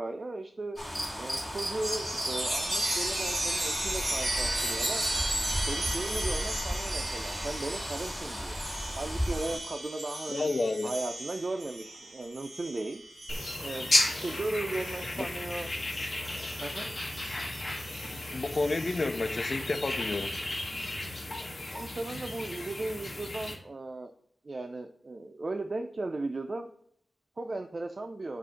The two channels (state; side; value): normal; both; correlation 0.94